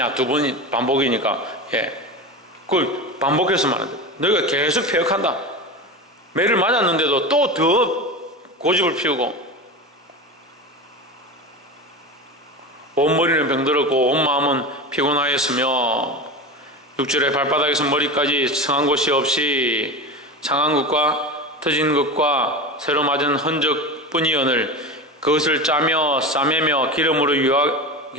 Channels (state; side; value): normal; both; correlation 0.26